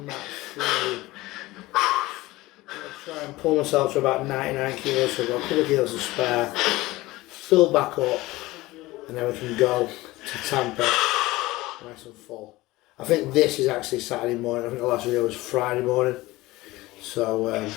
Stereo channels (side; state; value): right; quieter; 19.3 dB